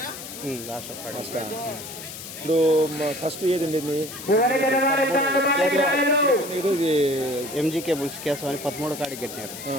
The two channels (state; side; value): noise; left; hiss, 11 dB below the sound